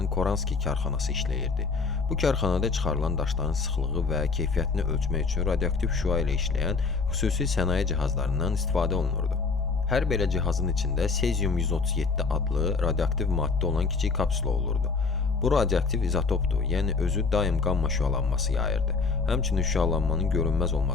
Koranski karxanası işləyirdi. Bu karxanada çıxarılan daşların sıxlığı və keyfiyyətini ölçmək üçün radioaktiv şüa ilə işləyən xüsusi sənaye cihazlarından istifadə olunurdu. Hər belə cihazın içində Sezium-137 adlı radioaktiv maddə olan kiçik kapsula olurdu. Bu radioaktiv izotopdur, yəni özü daim qamma şüalanması yayırdı. Həmçinin şüalanmanın görünməz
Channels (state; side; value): quieter; right; 4.5 dB